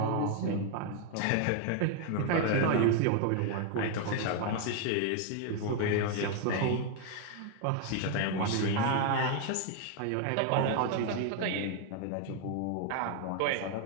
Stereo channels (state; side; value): different; both; correlation 0.00